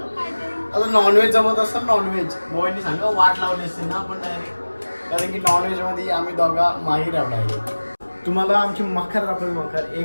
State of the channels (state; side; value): inverted; both; correlation -1.00